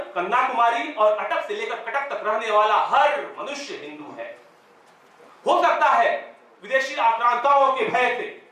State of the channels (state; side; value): identical; both; correlation 1.00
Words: कन्याकुमारी और अटक से लेकर कटक तक रहने वाला हर मनुष्य हिंदू है। हो सकता है विदेशी आक्रांताओं के भय से